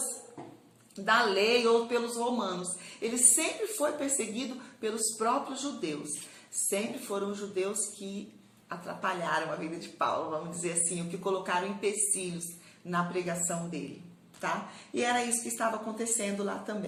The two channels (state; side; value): identical; both; correlation 1.00